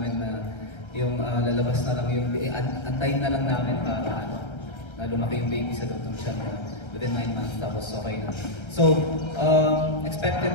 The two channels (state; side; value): late; right; 1.3 ms